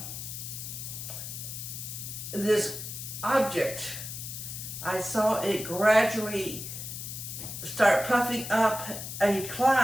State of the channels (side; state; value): left; noise; hiss, 7 dB below the sound